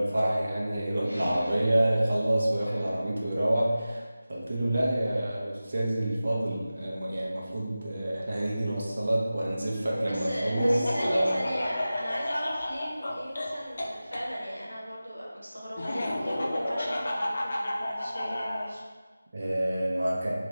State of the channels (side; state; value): both; inverted; correlation -0.96